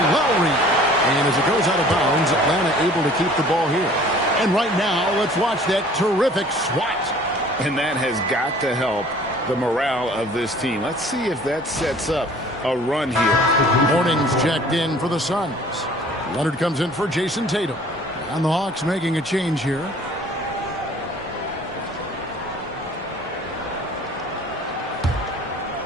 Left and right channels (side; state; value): both; normal; correlation 0.51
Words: Lowry. And as it goes out of bounds, Atlanta able to keep the ball here. And right now, let's watch that terrific swat. And that has got to help the morale of this team. Let's see if that sets up a run here. Morning's checked in for the Suns. Leonard comes in for Jason Tatum. And the Hawks making a change here.